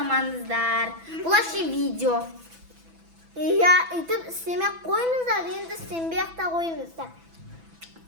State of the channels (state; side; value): late; left; 6.0 ms